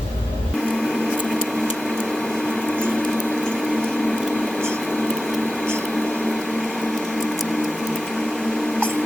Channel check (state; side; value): normal; both; correlation 0.92